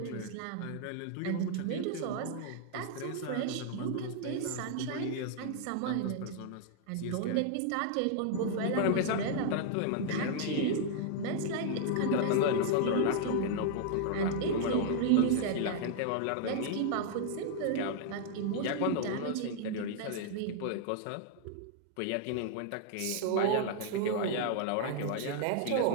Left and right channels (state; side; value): different; both; correlation -0.01